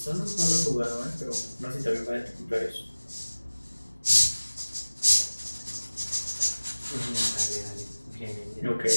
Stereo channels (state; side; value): inverted; both; correlation -1.00